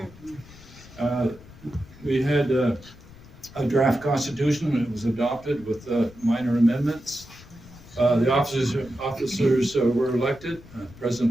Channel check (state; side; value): noise; left; rumble, 20 dB below the sound